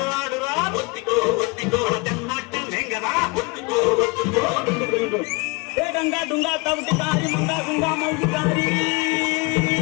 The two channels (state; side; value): quieter; right; 27.3 dB